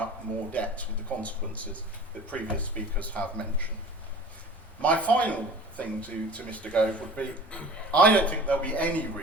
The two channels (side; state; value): both; normal; correlation 0.41